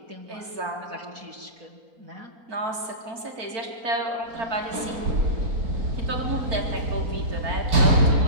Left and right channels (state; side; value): late; left; 4.5 ms